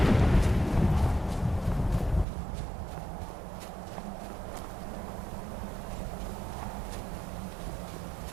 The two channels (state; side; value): drops out; left; at 2.2 s